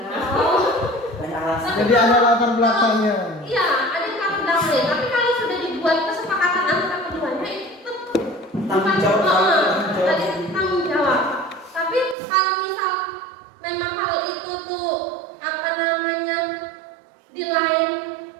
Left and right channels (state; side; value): drops out; left; at 12.2 s